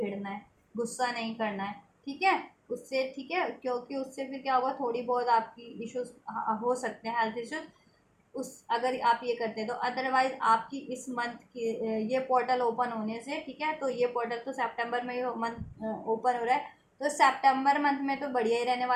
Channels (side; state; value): both; identical; correlation 1.00